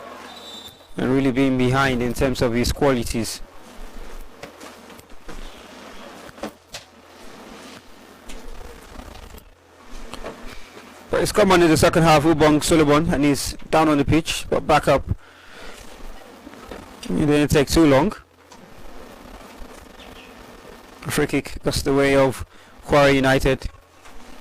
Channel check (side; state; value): both; identical; correlation 1.00